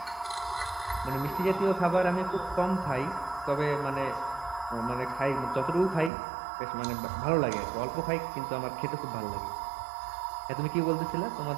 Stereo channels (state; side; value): drops out; left; at 6.1 s